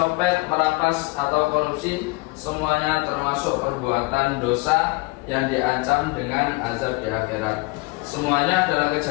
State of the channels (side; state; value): right; quieter; 25.6 dB